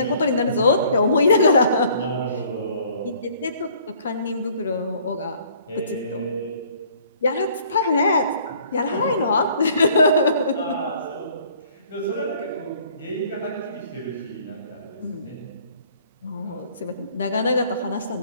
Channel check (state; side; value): inverted; both; correlation -0.57